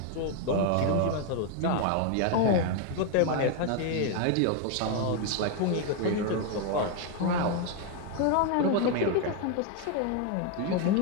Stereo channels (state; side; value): different; both; correlation 0.01